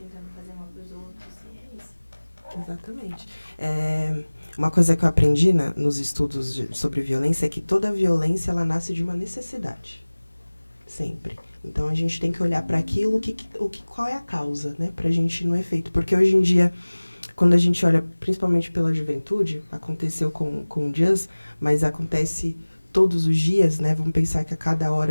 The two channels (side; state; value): both; inverted; correlation -1.00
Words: fazer mal para os outros, e é isso. Exatamente. Uma coisa que eu aprendi nos estudos sobre violência é que toda violência ela nasce de uma necessidade. Sempre. Então a gente tem que olhar para aquilo, qual é a causa, né? Pra gente não é feito. Porque hoje em dia, quando a gente olha, principalmente pela juventude, aconteceu com o Just, mas acontece todos os dias, né? Vamos pensar que a cada